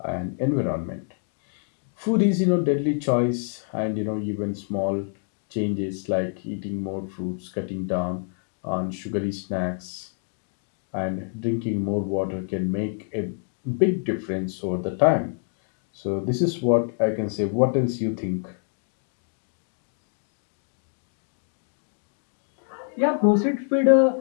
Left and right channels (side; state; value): right; silent; 56 dB below the other